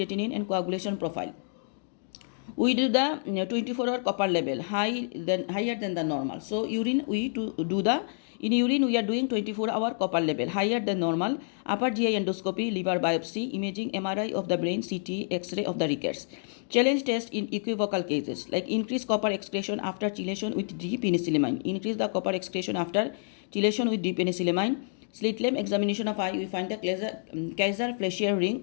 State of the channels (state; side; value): silent; right; digital silence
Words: and coagulation profile. We do the 24-hour copper level higher than the normal. So urine in urine we are doing 24-hour copper level higher than normal. Upper GI endoscopy, liver biopsy, imaging, MRI of the brain, CT, X-ray of the rickets. Challenge test in equivocal cases like increase copper excretion after chelation with D-penicillamine. Increase the copper excretion after chelation with D-penicillamine. Slit lamp examination of eye, we find the Kaiser Fleischer ring